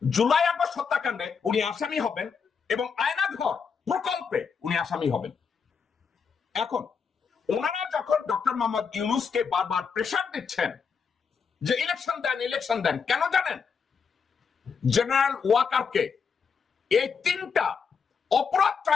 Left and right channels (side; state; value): right; quieter; 6.0 dB